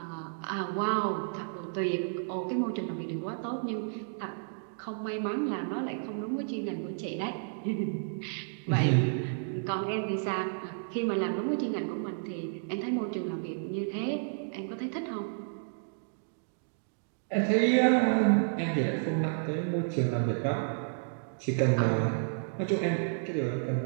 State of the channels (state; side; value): silent; left; digital silence